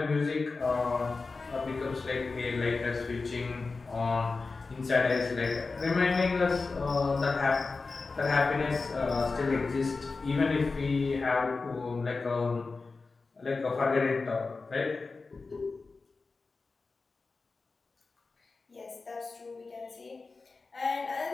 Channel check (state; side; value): quieter; right; 4.0 dB